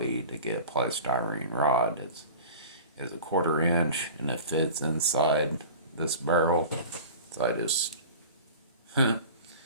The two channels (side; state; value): both; inverted; correlation -0.37